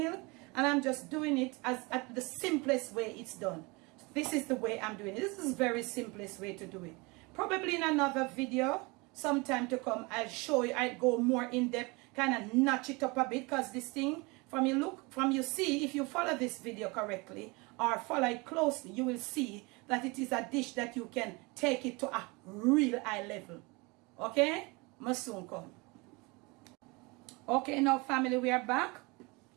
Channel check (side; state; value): left; quieter; 26.6 dB